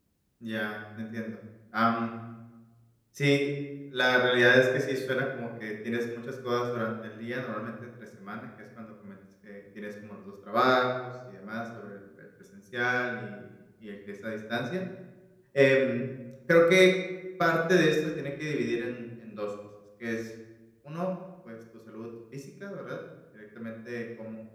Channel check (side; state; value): both; identical; correlation 1.00